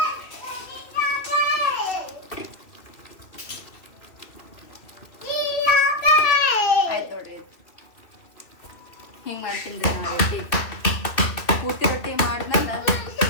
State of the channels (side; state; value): right; late; 2.3 ms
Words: ಹಿಂಗೆ ಮಾಡ್ತೀನಿ ರೀ ನಾವು ರೊಟ್ಟಿ. ಪೂರ್ತಿ ರೊಟ್ಟಿ ಮಾಡಿದ್ಮೇಲೆ